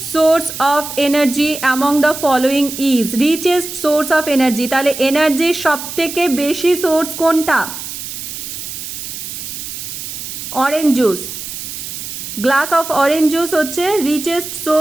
source of energy among the following is richest source of energy তাহলে এনার্জির সবথেকে বেশি সোর্স কোনটা orange juice glass of orange juice হচ্ছে richest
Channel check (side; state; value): right; noise; hiss, 8 dB below the sound